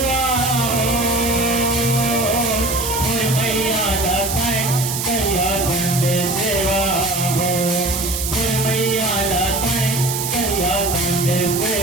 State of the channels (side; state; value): right; noise; hiss, 3 dB below the sound